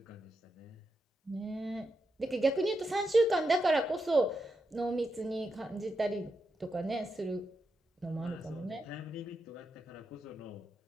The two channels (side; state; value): both; normal; correlation 0.86